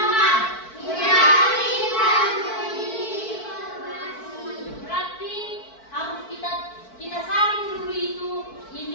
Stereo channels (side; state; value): right; late; 4.5 ms